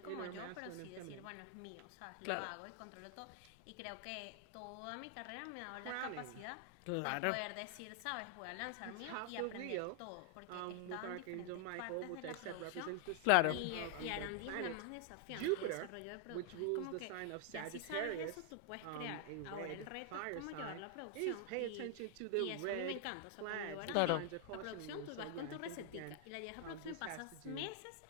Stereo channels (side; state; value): both; different; correlation 0.00